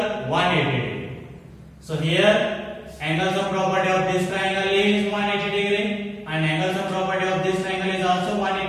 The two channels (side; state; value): both; identical; correlation 1.00